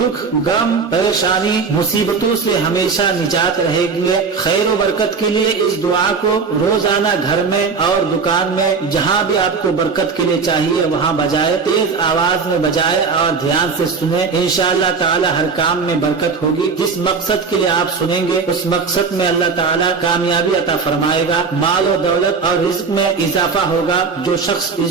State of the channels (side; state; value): left; quieter; 5.0 dB